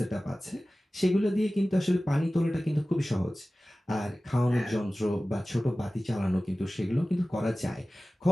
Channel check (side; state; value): both; normal; correlation 0.97